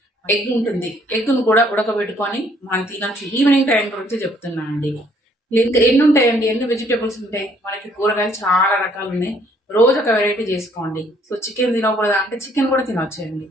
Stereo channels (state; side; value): normal; both; correlation 0.64